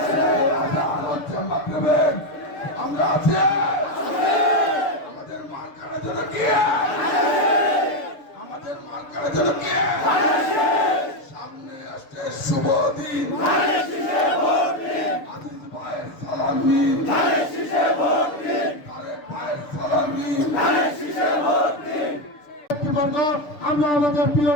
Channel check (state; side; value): late; right; 6.8 ms